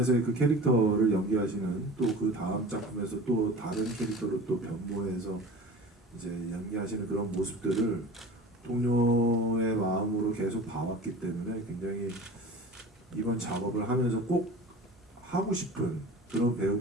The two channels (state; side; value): normal; both; correlation 0.38